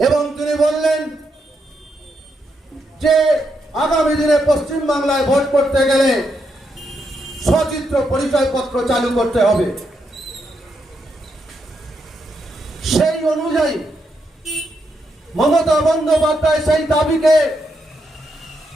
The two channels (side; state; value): both; normal; correlation 0.81